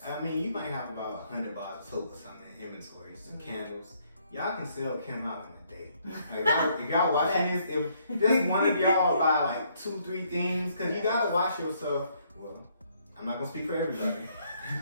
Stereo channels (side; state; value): both; inverted; correlation -0.69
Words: I mean, you might have about 100 bars of soap or something in inventory, some candles. Y'all can sell Kim out in a day. Like, if y'all watching this, if just one of y'all buy like 2-3 things, because you gotta wash yourself. Well, I'm not gonna speak for everybody,